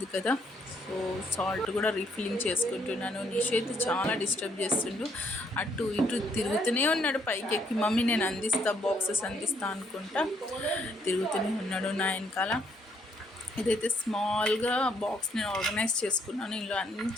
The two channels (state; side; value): normal; both; correlation 0.70